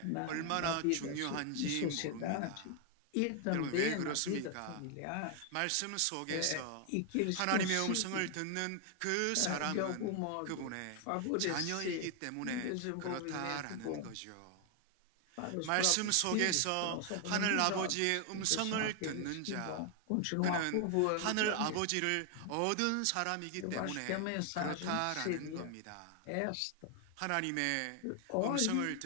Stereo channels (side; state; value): both; different; correlation 0.00